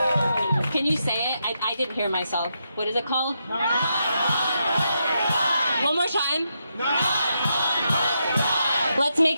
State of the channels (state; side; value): inverted; both; correlation -0.82